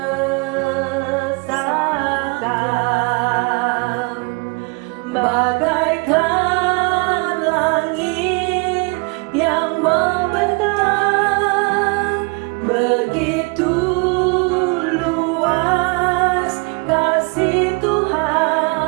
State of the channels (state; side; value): quieter; left; 31.2 dB